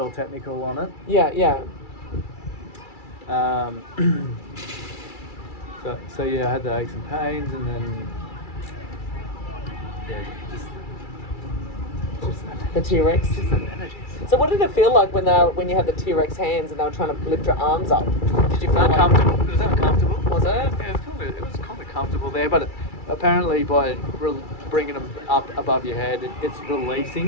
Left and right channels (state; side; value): late; right; 2.3 ms